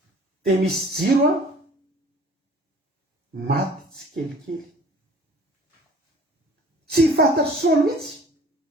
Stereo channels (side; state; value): both; normal; correlation 0.49